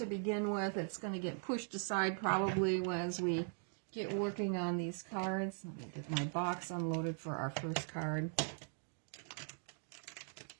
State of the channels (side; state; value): left; silent; 51 dB below the other